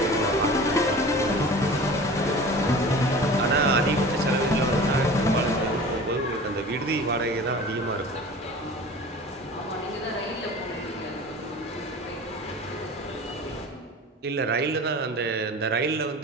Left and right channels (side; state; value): both; normal; correlation 0.39